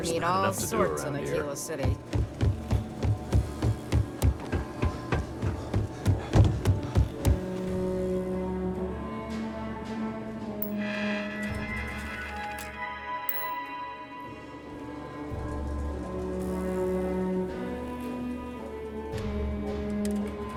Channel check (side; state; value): both; identical; correlation 1.00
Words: There's meet not all enough to do sorts in around here. Aquila City.